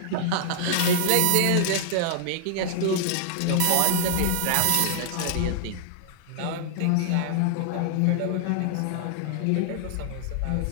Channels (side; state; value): both; different; correlation 0.00